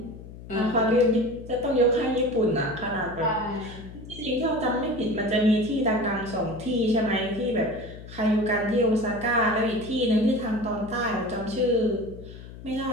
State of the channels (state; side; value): noise; left; hum, 15 dB below the sound